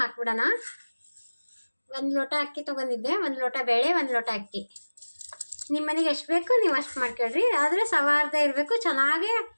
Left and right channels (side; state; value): both; inverted; correlation -1.00